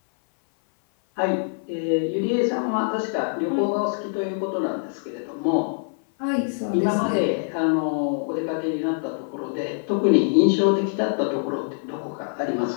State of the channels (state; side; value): silent; right; 57 dB below the other